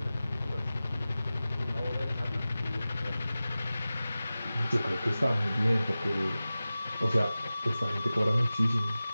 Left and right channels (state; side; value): inverted; both; correlation -0.96